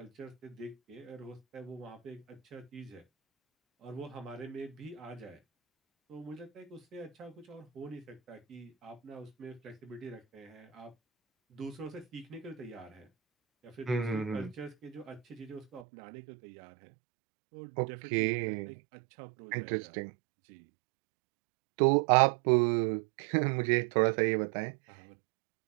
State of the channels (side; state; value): left; drops out; at 15.9 s